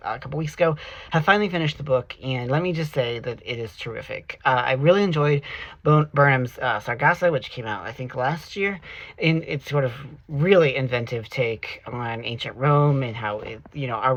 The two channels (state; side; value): identical; both; correlation 1.00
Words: a couple weeks ago. Have finally finished the book, and let me just say that it is terrific. I really enjoyed Burnham's Sargasso, which came out I think last year, and it's sort of really inventive take on ancient Rome and how our